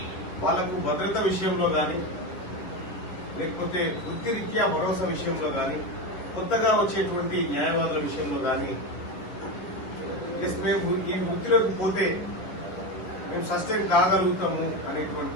వాళ్లకు భద్రత విషయంలో కానీ, లేకపోతే వృత్తిరీత్యా భరోసా విషయంలో కానీ, కొత్తగా వచ్చేటువంటి న్యాయవాదుల విషయంలో కానీ, మేము ఈ వృత్తిలోకి పోతే మేము సస్టైన్ కాగలుగుతాము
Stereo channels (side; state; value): right; late; 10 ms